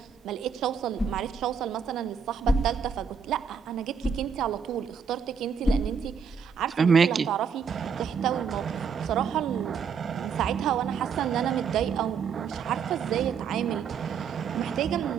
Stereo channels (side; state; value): left; quieter; 6.4 dB